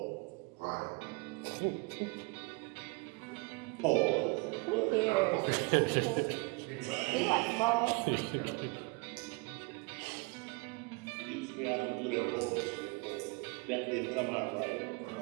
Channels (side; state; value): left; quieter; 28.1 dB